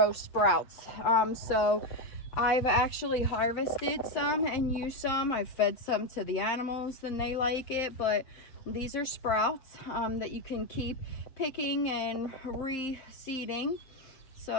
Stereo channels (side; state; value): right; late; 7.6 ms